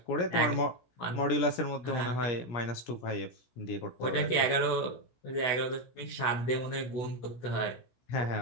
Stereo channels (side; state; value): right; late; 17 ms